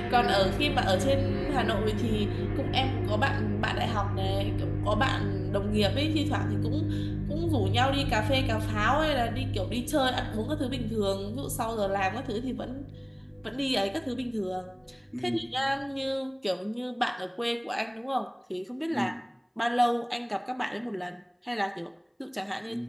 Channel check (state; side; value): identical; both; correlation 1.00